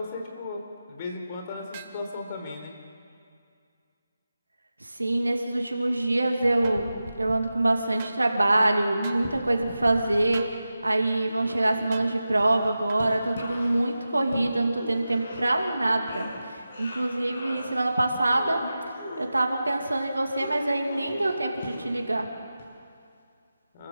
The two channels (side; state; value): both; inverted; correlation -0.93